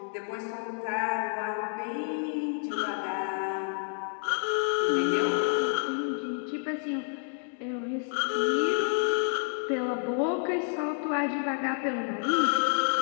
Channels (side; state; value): right; silent; 58 dB below the other